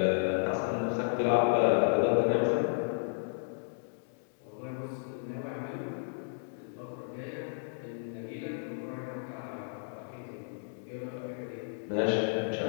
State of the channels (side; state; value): right; silent; digital silence